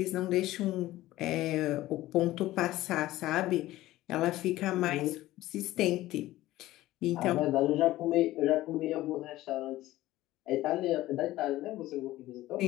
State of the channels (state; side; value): quieter; right; 16.2 dB